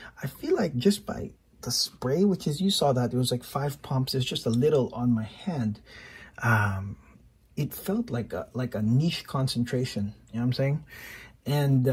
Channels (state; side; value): identical; both; correlation 1.00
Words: I feel like just by the spray, which is, you saw that it was like 5 pumps, it's just a little on my hand, it felt like a niche concentration, you know what I'm saying? And